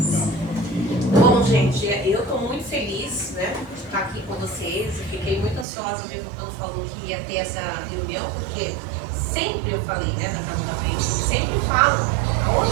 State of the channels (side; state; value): left; drops out; at 5.7 s